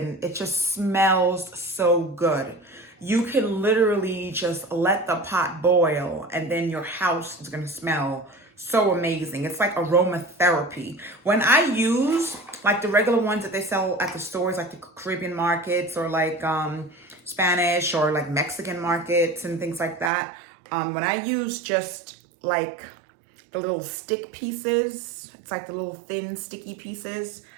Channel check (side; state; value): left; drops out; at 20.1 s